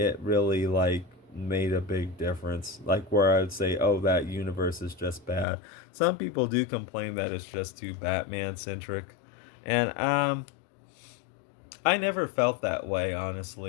really, like, made a big difference. Like, where I would say, oh, that universe is just bad. Some people do complain that it's just too Batman-centric. And, I never felt that way,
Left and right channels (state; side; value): drops out; right; at 5.5 s